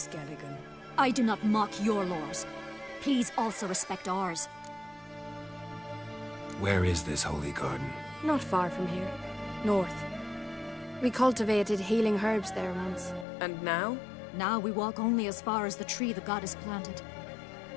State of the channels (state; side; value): drops out; right; at 13.2 s